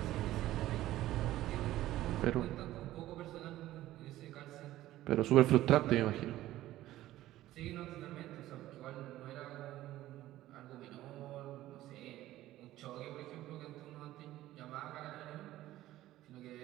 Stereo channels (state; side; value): quieter; left; 15.0 dB